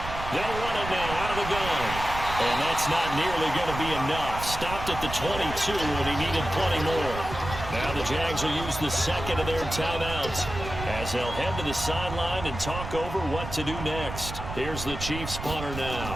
They'll run it now out of the gun. And that's not nearly going to be enough. Stopped at the 22, and he needed plenty more. Now the Jags will use the second of their timeouts as they'll head to the sideline and talk over what to do next. Here's the Chiefs punter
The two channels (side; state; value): right; noise; rumble, 8 dB below the sound